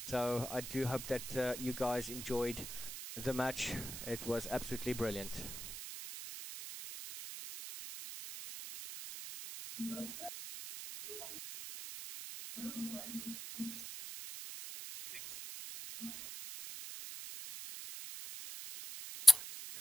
so I do hope that you guys enjoyed the match. It was absolutely brilliant.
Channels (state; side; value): noise; right; hiss, 8 dB below the sound